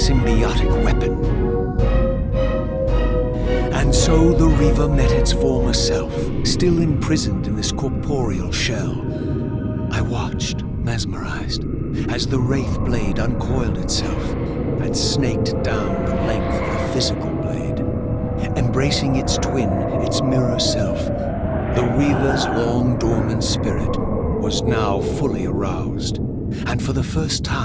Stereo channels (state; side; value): identical; both; correlation 1.00